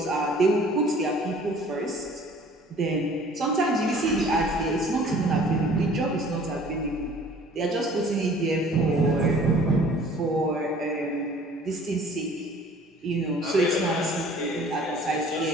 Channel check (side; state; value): both; normal; correlation 0.51